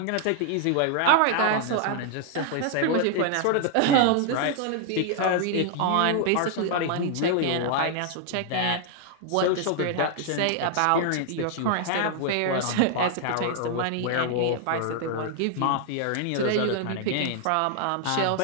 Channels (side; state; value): both; different; correlation 0.00